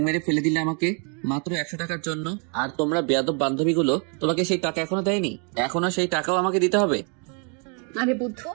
মেরে ফেলে দিলে আমাকে মাত্র 100 টাকার জন্য, আর তোমরা বেয়াদব বান্ধবীগুলো তোমাকে সেই টাকা এখনো দেয়নি, এখনো সেই টাকাও আমাকে দিতে হবে? আরে বুদ্ধ,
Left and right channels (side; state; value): left; quieter; 37.6 dB